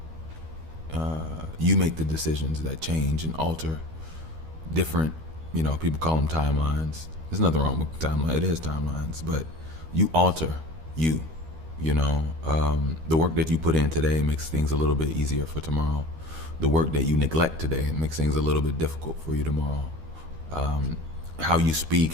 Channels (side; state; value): left; late; 13 ms